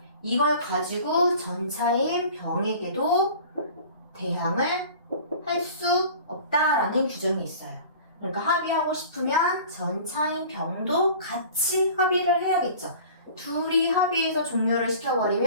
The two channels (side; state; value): both; inverted; correlation -0.43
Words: 이걸 가지고 전차인 병에게도 대항을 할 수 없다라는 규정이 있어요. 그러니까 합의하고 싶으면 전차인 병도 같이 합의를 해야겠죠. 둘이 합의해서 종료를